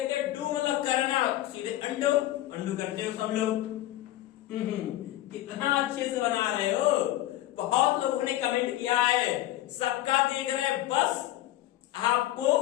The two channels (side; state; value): right; quieter; 14.7 dB